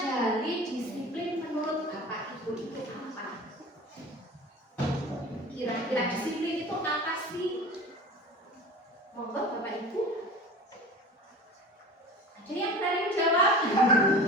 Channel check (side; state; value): both; normal; correlation 0.37